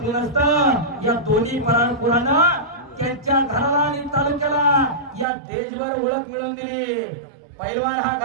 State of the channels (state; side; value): drops out; left; at 5.2 s